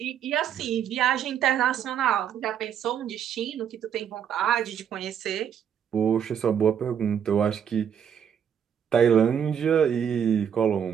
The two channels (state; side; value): quieter; left; 8.5 dB